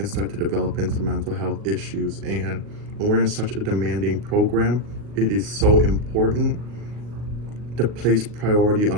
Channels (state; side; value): late; left; 39 ms